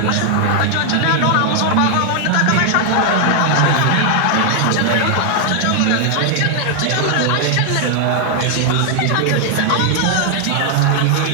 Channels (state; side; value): different; both; correlation 0.00